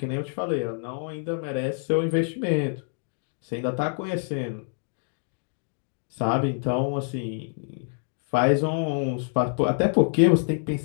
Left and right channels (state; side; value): silent; right; 61 dB below the other